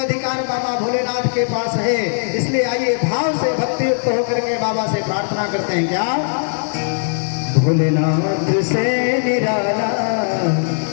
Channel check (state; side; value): silent; right; digital silence